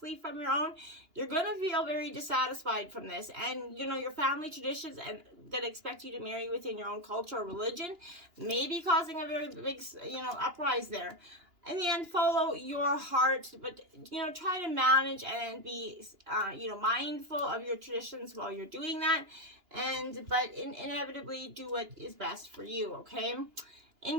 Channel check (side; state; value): left; late; 2.9 ms